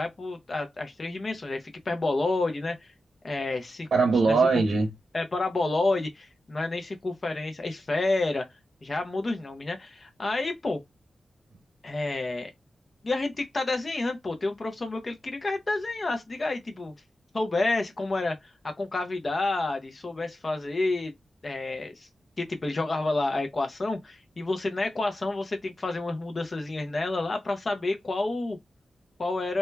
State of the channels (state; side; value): normal; both; correlation 0.91